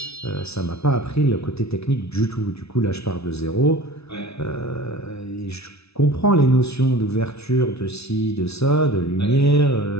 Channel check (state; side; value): late; right; 0.80 ms